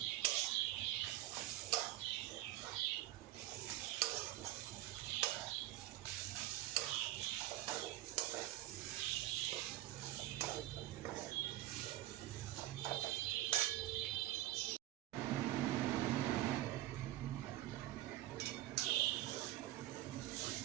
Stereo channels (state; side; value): quieter; left; 15.4 dB